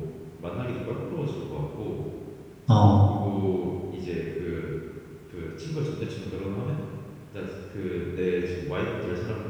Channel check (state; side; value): identical; both; correlation 1.00